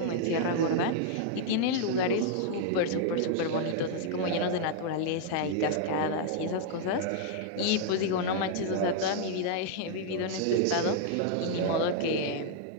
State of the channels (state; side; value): different; both; correlation -0.01